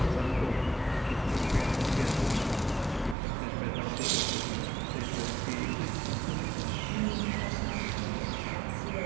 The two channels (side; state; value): left; drops out; at 3.2 s